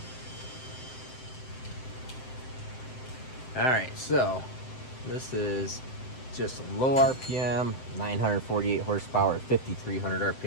All right, so this is just low RPM, 948 horsepower at 5,300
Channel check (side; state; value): right; late; 7.7 ms